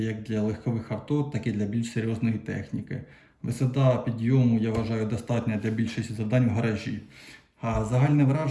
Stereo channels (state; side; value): identical; both; correlation 1.00